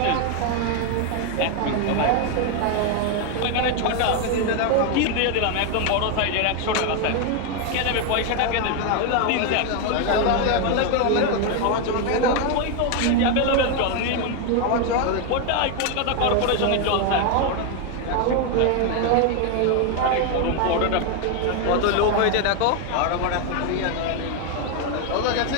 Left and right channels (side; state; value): both; different; correlation 0.01